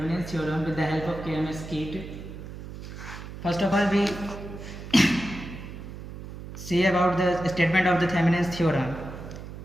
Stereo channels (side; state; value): right; noise; hum, 11 dB below the sound